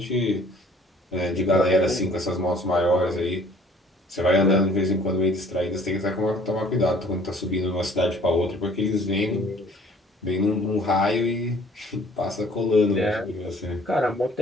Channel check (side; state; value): both; normal; correlation 0.55